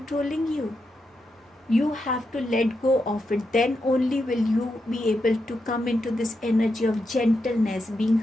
you? You have to let go of it. Then only will you be able to come into this energy of gentleness, being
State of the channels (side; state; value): both; normal; correlation 0.85